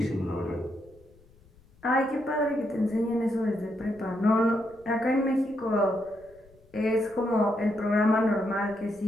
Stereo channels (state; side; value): noise; left; rumble, 28 dB below the sound